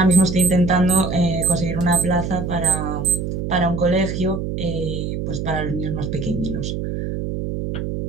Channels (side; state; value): right; noise; hum, 4 dB below the sound